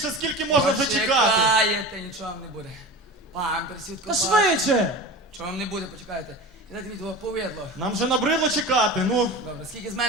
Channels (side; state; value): both; normal; correlation 0.32